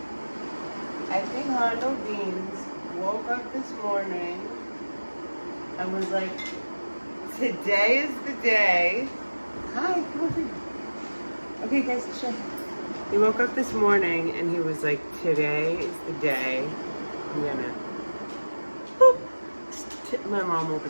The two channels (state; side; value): inverted; both; correlation -1.00